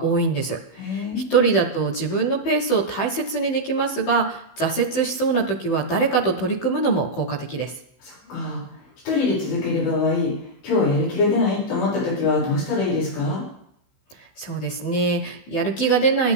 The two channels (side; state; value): right; late; 15 ms